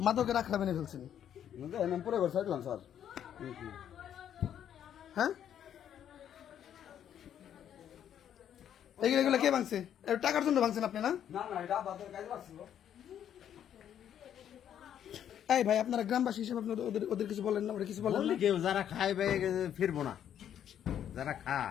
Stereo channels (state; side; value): quieter; right; 9.8 dB